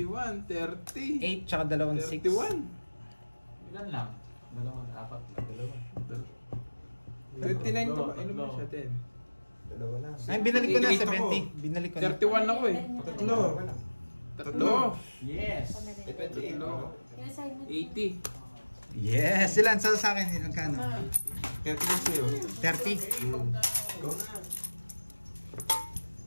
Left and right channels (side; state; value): both; inverted; correlation -1.00